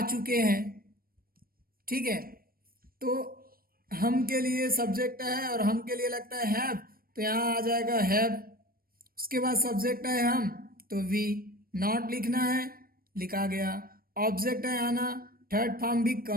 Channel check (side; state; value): left; late; 0.43 ms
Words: चुके हैं, ठीक है। तो हम के लिए सब्जेक्ट है और हम के लिए लगता है हैव, तो यहाँ आ जाएगा हैव। उसके बाद सब्जेक्ट है हम, तो वी, नॉट लिखना है, लिखा गया। ऑब्जेक्ट है आना, थर्ड फॉर्म भी